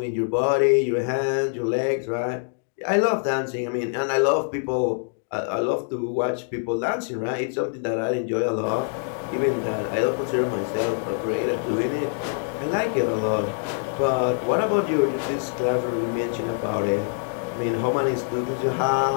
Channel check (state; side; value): silent; right; digital silence